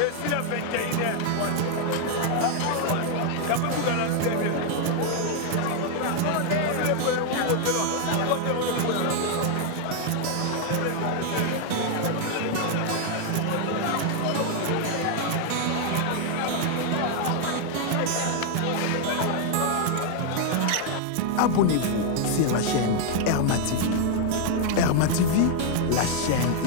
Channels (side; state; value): both; different; correlation 0.00